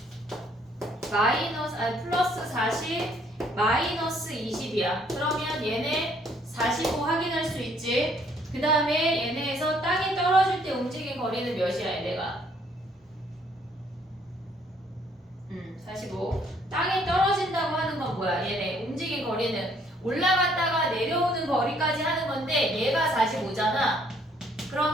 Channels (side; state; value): both; normal; correlation 0.64